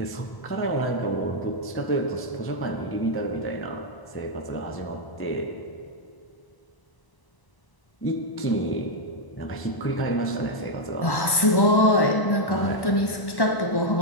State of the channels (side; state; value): right; late; 1.1 ms